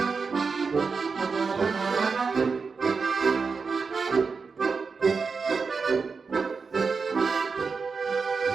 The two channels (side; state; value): left; quieter; 4.9 dB